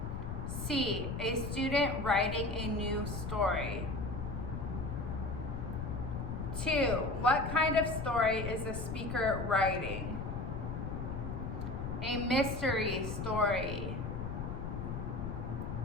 C, a student writing a new story. 2, what kind of story is the speaker writing? A mystery story.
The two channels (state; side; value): noise; left; rumble, 4 dB below the sound